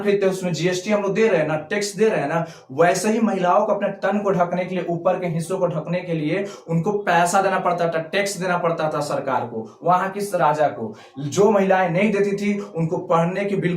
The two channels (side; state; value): both; identical; correlation 1.00